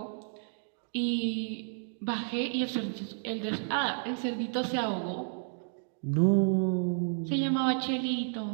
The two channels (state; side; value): silent; left; digital silence